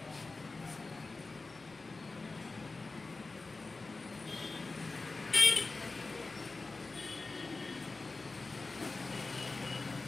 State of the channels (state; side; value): quieter; right; 3.6 dB